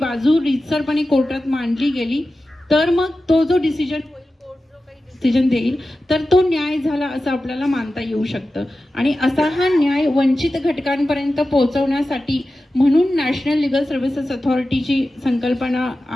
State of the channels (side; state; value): both; normal; correlation 0.94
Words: रीतसरपणे कोर्टात मांडली गेली, तर मग तो जो डिसिजन होईल, कोर्ट जो काही डिसिजन देईल, तर तो न्याय झाला असं आपल्याला मानता येऊ शकतं. आणि असा हा न्याय वंचित घटकांपर्यंत पोहोचवण्यासाठी म्हणून नॅशनल लिगल सर्व्हिसेस अथॉरिटीची संकल्पना